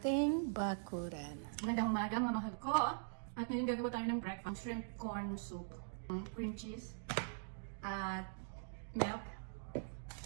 bakuran. Magandang umaga mga mahal ko. At ngayon gagawa tayo ng breakfast. Shrimp corn soup. Cream cheese. At milk.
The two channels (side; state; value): left; silent; digital silence